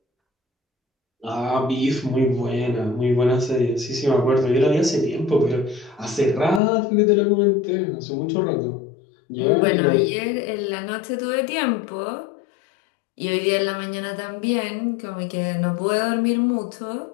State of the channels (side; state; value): right; drops out; at 6.6 s